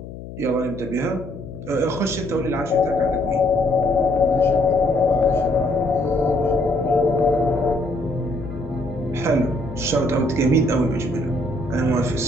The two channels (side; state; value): left; noise; hum, 12 dB below the sound